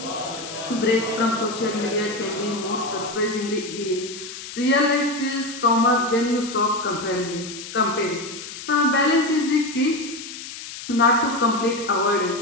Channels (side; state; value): left; noise; hiss, 11 dB below the sound